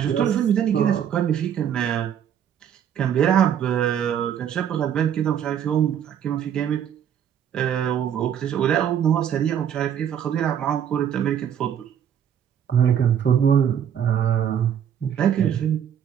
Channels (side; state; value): left; quieter; 9.2 dB